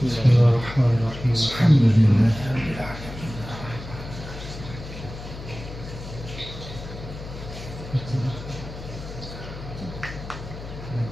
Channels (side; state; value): left; noise; hum, 11 dB below the sound